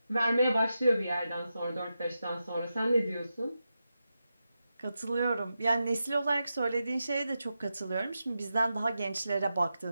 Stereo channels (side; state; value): both; inverted; correlation -0.89